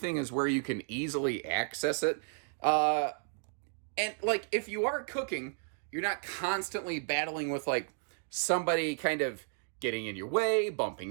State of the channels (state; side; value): silent; left; 56 dB below the other